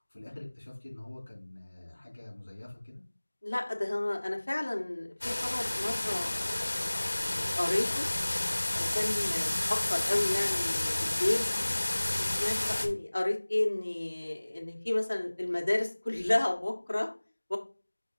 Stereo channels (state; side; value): inverted; both; correlation -1.00